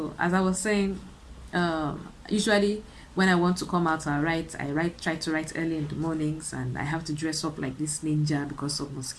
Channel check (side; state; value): both; identical; correlation 1.00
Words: as I was saying, usually when I want to come out, try to write early in the mornings, and I have to dress up like this ninja because of